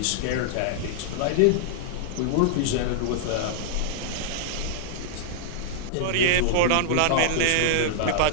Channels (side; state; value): both; different; correlation -0.01